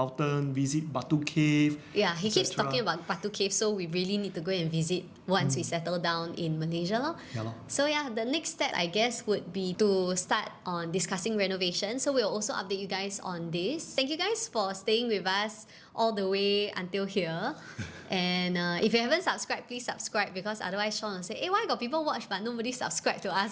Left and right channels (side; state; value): both; identical; correlation 1.00